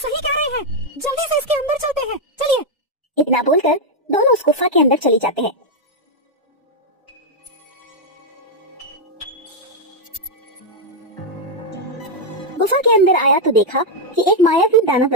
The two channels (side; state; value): both; normal; correlation -0.01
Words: कह रहे हैं। जल्दी से इसके अंदर चलते हैं, चलिए। इतना बोलकर दोनों उस गुफा के अंदर चले जाते हैं। गुफा के अंदर आया तो देखा कि एक मायावी दानव